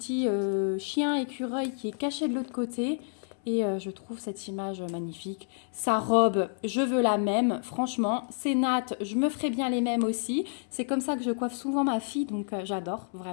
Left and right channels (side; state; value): right; silent; 58 dB below the other